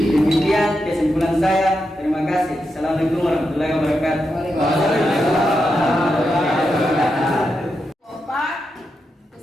kesimpulan saya. Terima kasih. Assalamualaikum warahmatullahi wabarakatuh.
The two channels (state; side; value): normal; both; correlation 0.86